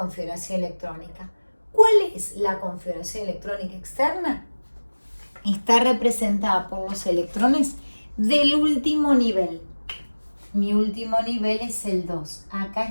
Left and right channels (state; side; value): inverted; both; correlation -1.00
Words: electrónica. ¿Cuál es la configuración electrónica externa? Está representada por los electrones del último nivel. Mi último nivel es el 2. Acá